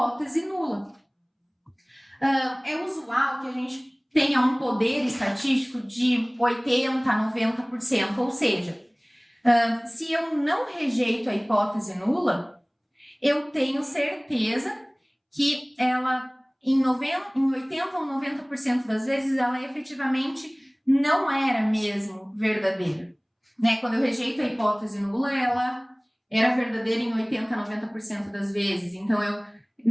nula. É usual que a gente tenha um poder estatístico de 80% a 90%, ou seja, se eu não rejeito a hipótese nula, eu tenho certeza que ela, em 80% ou 90% das vezes, ela efetivamente não era mesmo verdadeira. Né? Quando eu rejeito a hipótese nula, ela era verdadeira em 80% a 90% das vezes. Então,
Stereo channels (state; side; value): identical; both; correlation 1.00